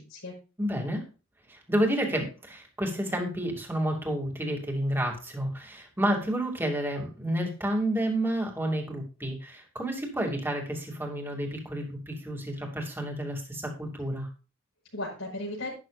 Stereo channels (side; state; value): both; normal; correlation 0.76